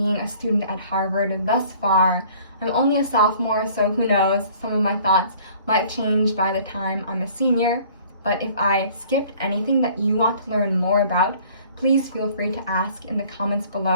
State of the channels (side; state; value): both; inverted; correlation -0.53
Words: a student at Harvard thus far. I'm only a sophomore, so who knows, some of my thoughts might change by the time I'm a senior. But if I skipped anything that you want to learn more about, please feel free to ask in the comments